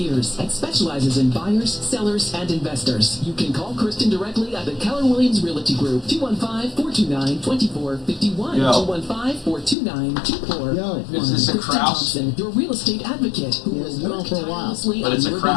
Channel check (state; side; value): drops out; right; at 9.8 s